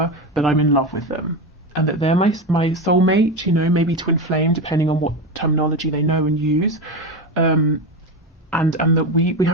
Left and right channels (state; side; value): normal; both; correlation 0.18